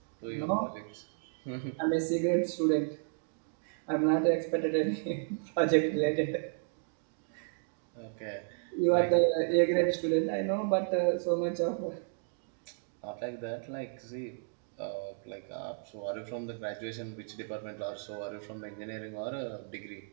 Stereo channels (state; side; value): silent; left; digital silence